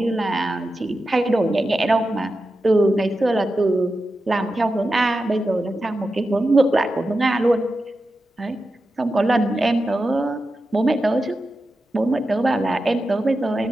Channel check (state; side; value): normal; both; correlation 0.91